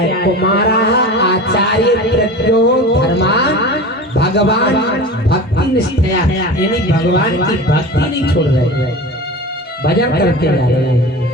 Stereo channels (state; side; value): normal; both; correlation 0.33